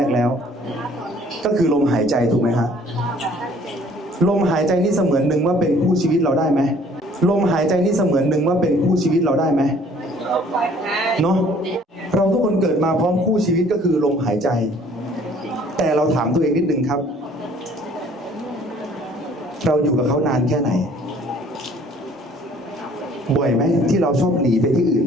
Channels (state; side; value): normal; both; correlation 0.56